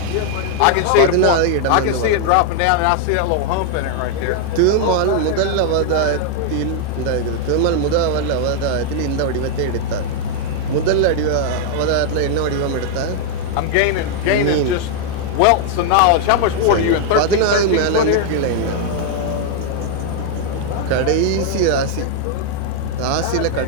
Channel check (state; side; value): different; both; correlation 0.00